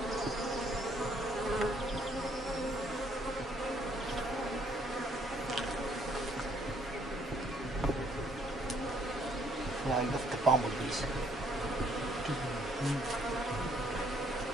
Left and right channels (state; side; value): normal; both; correlation 0.66